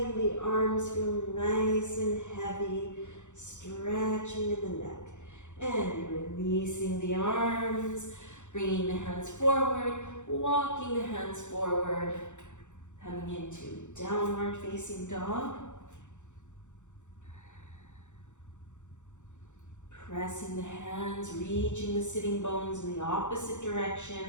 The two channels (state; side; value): late; right; 0.84 ms